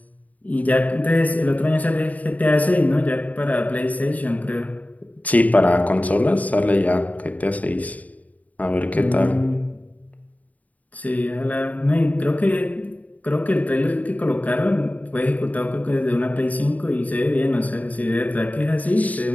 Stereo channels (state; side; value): late; right; 0.073 ms